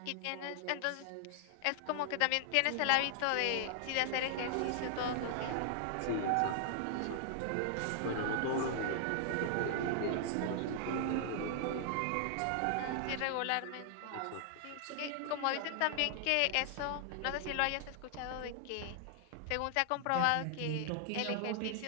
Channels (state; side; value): different; both; correlation -0.01